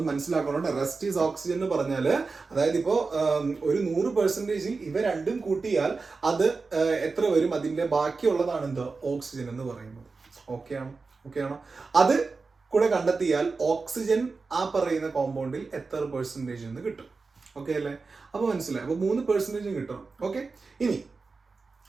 മനസ്സിലാക്കണം. റെസ്റ്റ് ഈസ് ഓക്സിജൻ എന്ന് പറഞ്ഞാൽ അതായത് ഇപ്പോ ഒരു 100%ൽ ഇവ രണ്ടും കൂട്ടിയാൽ അത് എത്ര വരും? അതിന്റെ ബാക്കിയുള്ളതാണ് എന്ത്? ഓക്സിജൻ എന്ന് പറയുന്നത്. ഓക്കെയാണോ? അത് കൂടെ കണ്ടെത്തിയാൽ ഓക്സിജൻ ആ പറയുന്ന കോമ്പൗണ്ടിൽ എത്ര പെർസെൻറ്റേജ് എന്ന് കിട്ടും. ഓക്കെ അല്ലേ? അപ്പൊ മനസ്സിലായി. അപ്പൊ 3% കിട്ടണം. ഓക്കെ, ഇനി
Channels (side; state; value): left; quieter; 4.2 dB